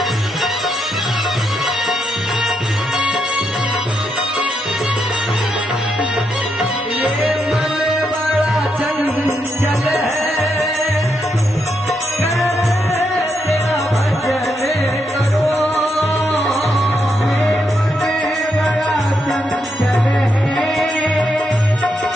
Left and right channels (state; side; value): normal; both; correlation 0.81